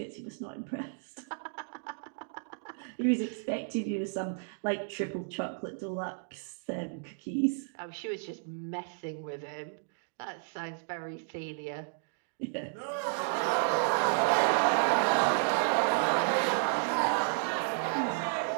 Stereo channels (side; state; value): left; silent; digital silence